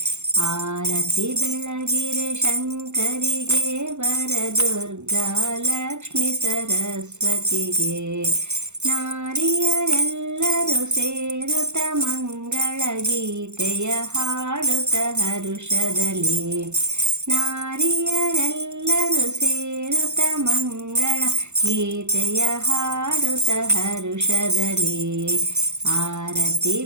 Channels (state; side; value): late; left; 0.83 ms